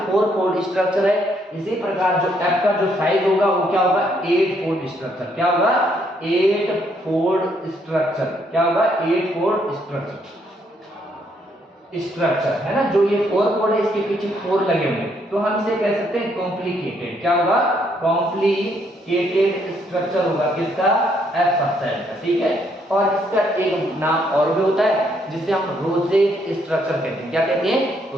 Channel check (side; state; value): both; normal; correlation 0.71